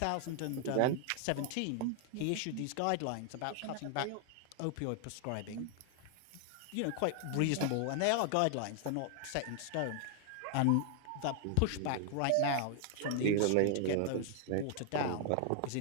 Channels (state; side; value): different; both; correlation 0.00